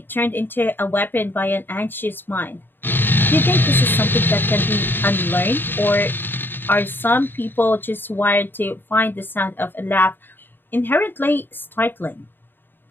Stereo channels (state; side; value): late; right; 0.096 ms